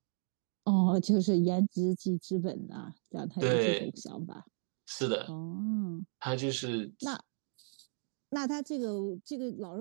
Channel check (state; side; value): silent; left; 55 dB below the other